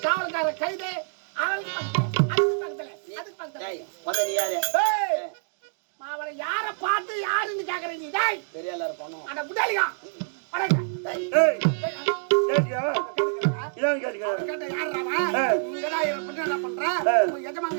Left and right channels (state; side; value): silent; left; digital silence